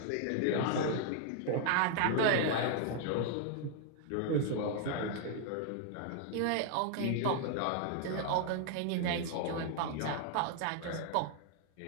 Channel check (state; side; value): different; both; correlation 0.00